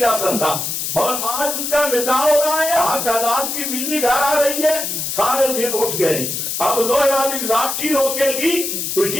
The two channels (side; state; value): left; noise; hiss, 3 dB below the sound